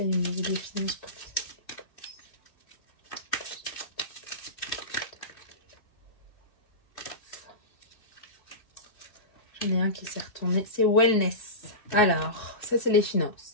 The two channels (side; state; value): right; late; 2.6 ms